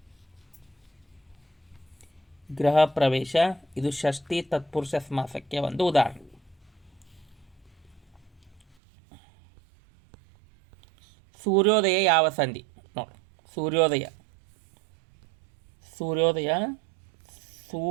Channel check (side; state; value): left; drops out; at 8.8 s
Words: ಗೃಹ ಪ್ರವೇಶ ಇದು ಷಷ್ಠಿ ತತ್ಪುರುಷ ಸಮಾಸಕ್ಕೆ ಒಂದು ಉದಾಹರಣೆ. ಸೂರ್ಯೋದಯ ಯಾವ ಸಂಧಿ? ನೋಡಿ, ಸೂರ್ಯೋದಯ ಸೂರ್ಯೋದಯ